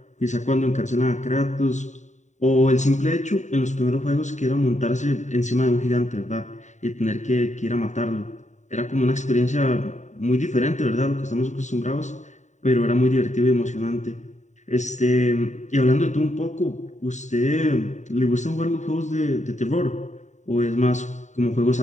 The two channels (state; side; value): late; right; 0.34 ms